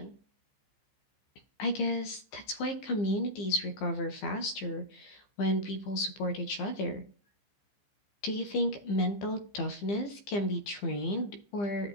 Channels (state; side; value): late; right; 15 ms